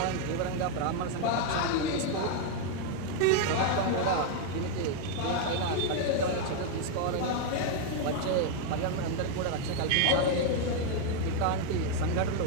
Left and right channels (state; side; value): different; both; correlation 0.00